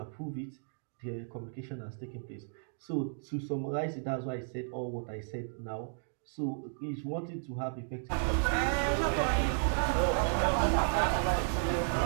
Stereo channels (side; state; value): left; silent; digital silence